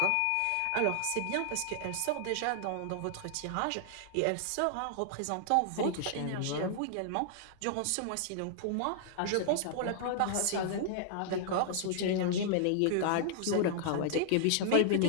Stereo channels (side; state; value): both; different; correlation -0.01